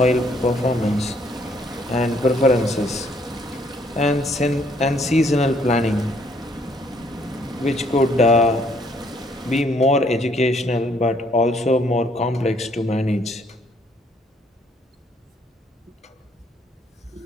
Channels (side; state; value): both; normal; correlation 0.66